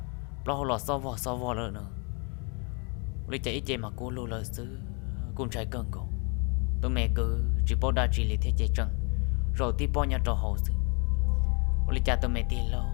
lo lò so vò nữa lấy chạy chạy mà cô lô lời sư cùng trái cơn cổ tụi mẹ cứ chỉ bao đa chỉ lấy thế chạy trăng rồi tí bao nhà trò hậu sư lấy cha tụi mẹ tí lâu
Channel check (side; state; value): right; quieter; 34.5 dB